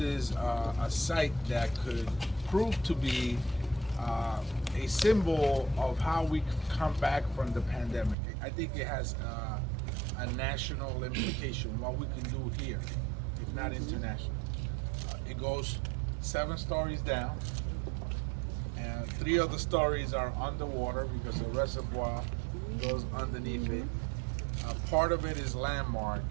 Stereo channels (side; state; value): left; drops out; at 8.2 s